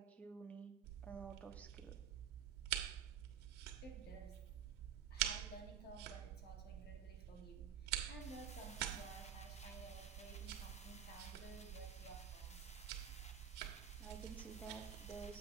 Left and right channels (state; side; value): quieter; left; 8.9 dB